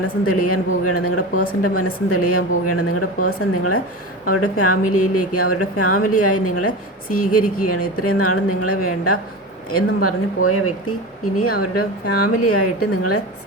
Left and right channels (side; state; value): both; normal; correlation 0.26